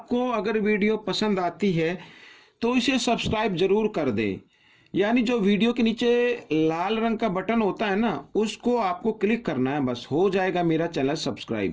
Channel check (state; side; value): identical; both; correlation 1.00